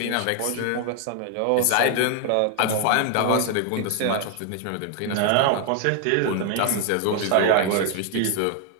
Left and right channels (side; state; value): both; different; correlation 0.00